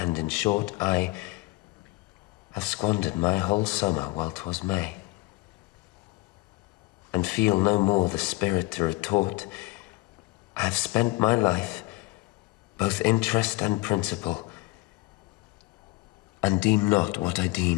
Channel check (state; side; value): quieter; right; 20.9 dB